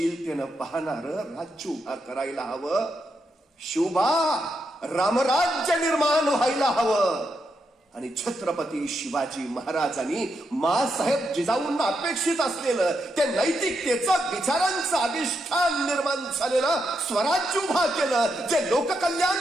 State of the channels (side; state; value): both; normal; correlation 0.82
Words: पाहणार राज्य उभा करायला हवं. शिवबा रामराज्य निर्माण व्हायला हवं. आणि छत्रपती शिवाजी महाराजांनी माँसाहेब जिजाऊंना अपेक्षित असलेलं ते नैतिकतेचं विचारांचं अधिष्ठान निर्माण झालेलं स्वराज्य उभा केलं, जे